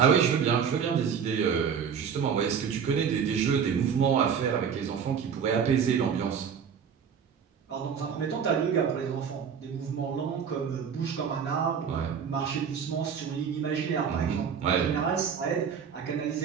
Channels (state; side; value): quieter; left; 7.2 dB